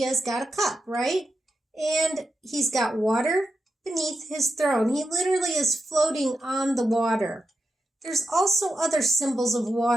has got a cup, right? And he's got water beneath his throne. He literally is floating on the water. There's also other symbols of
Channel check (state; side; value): normal; both; correlation 0.88